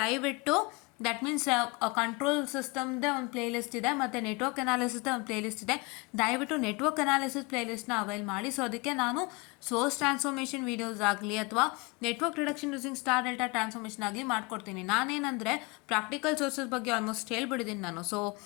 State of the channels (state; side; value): quieter; right; 27.0 dB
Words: ದಟ್ ಮೀನ್ಸ್ ಕಂಟ್ರೋಲ್ ಸಿಸ್ಟಮ್ದೇ ಒಂದು ಪ್ಲೇ ಲಿಸ್ಟ್ ಇದೆ ಮತ್ತು ನೆಟ್ವರ್ಕ್ ಅನಾಲಿಸಿಸ್ದೇ ಒಂದು ಪ್ಲೇ ಲಿಸ್ಟ್ ಇದೆ. ದಯವಿಟ್ಟು ನೆಟ್ವರ್ಕ್ ಅನಾಲಿಸಿಸ್ ಪ್ಲೇ ಲಿಸ್ಟ್ನ ಅವೈಲ್ ಮಾಡಿ. ಸೊ ಅದಕ್ಕೆ ನಾನು ಸೋರ್ಸ್ ಟ್ರಾನ್ಸ್ಫಾರ್ಮೇಷನ್ ವೀಡಿಯೋಸ್ ಆಗಲಿ ಅಥವಾ network reduction using star delta transformation ಆಗಲಿ ಮಾಡ್ಕೊಡ್ತೀನಿ. ನಾನೇನಂದರೆ ಪ್ರಾಕ್ಟಿಕಲ್ ಸೋರ್ಸಸ್ ಬಗ್ಗೆ ಆಲ್ಮೋಸ್ಟ್ ಹೇಳ್ಬಿಟ್ಟಿದ್ದೀನಿ ನಾನು. ಸೊ